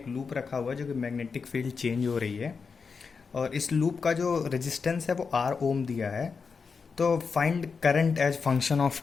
लूप रखा हुआ है जो कि मैग्नेटिक फील्ड चेंज हो रही है और इस लूप का जो रेजिस्टेंस है वो आर ओम दिया है। तो find current as function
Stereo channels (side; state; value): right; quieter; 5.3 dB